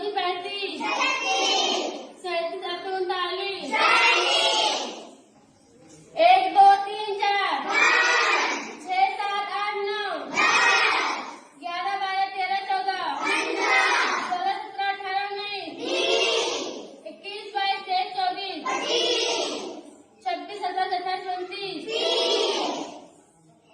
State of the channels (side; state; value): both; identical; correlation 1.00